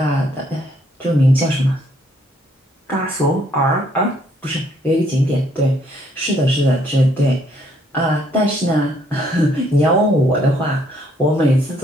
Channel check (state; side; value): normal; both; correlation 0.68